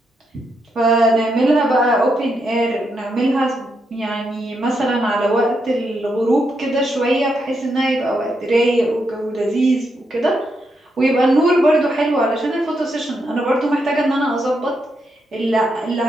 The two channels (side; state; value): both; normal; correlation 0.81